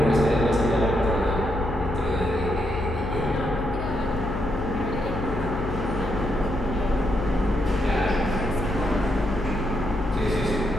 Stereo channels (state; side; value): noise; left; hum, 7 dB below the sound